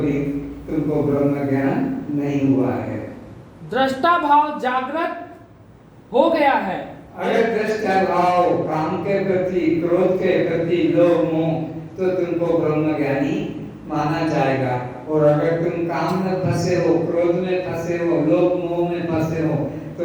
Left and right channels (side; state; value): both; identical; correlation 1.00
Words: तुमको ब्रह्म ज्ञान नहीं हुआ है। दृष्टा भाव जागृत हो गया है। अगर दृष्टा भाव काम के प्रति क्रोध के प्रति लोभ मोह तो तुमको ब्रह्म ज्ञानी माना जाएगा। और अगर तुम काम में फंसे हो, क्रोध में फंसे हो, लोभ मोह में फंसे हो